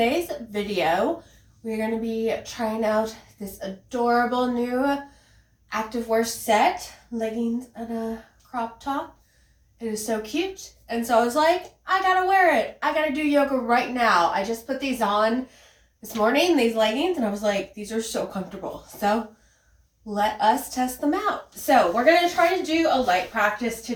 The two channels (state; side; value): identical; both; correlation 1.00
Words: video, we're going to be trying out this adorable new activewear set, leggings and a crop top. It is so cute, and so I was like, I gotta wear it. I gotta do yoga right now. I just put these on this morning, these leggings, and I was like, these are so comfortable. So let us test them out. So we're going to try to do a light practice